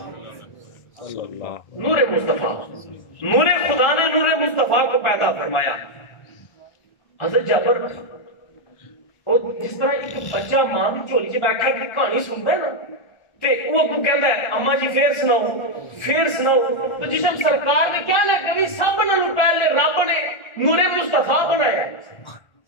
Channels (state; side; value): late; right; 1.3 ms